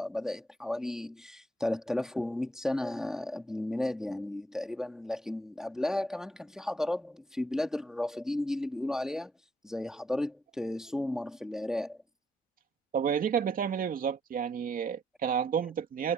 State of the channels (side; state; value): both; normal; correlation 0.72